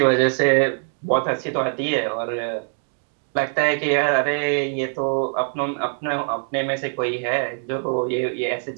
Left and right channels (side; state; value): left; silent; 64 dB below the other